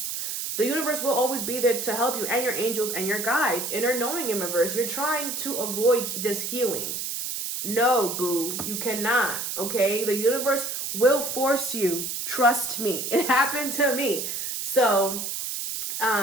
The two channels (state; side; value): noise; right; hiss, 4 dB below the sound